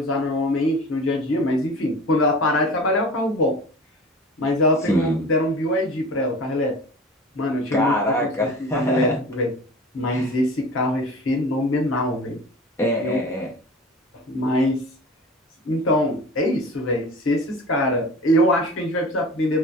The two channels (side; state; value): both; normal; correlation 0.38